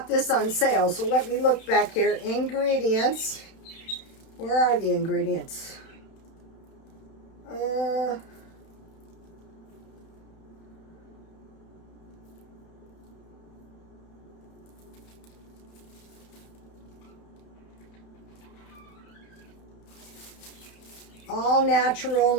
this on sale, so let me look back here. Ingredients. Where are the ingredients? All natural,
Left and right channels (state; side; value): late; right; 31 ms